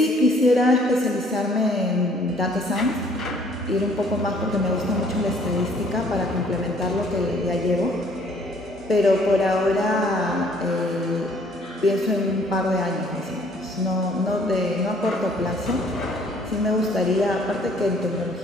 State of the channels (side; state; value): both; normal; correlation 0.60